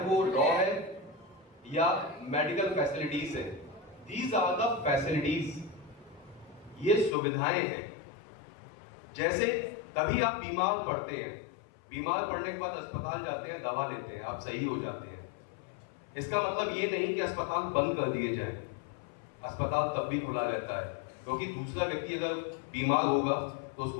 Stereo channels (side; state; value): right; drops out; at 7.2 s